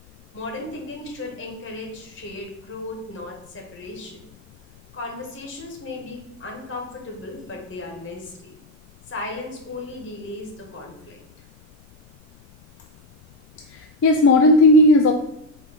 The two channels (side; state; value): left; noise; rumble, 26 dB below the sound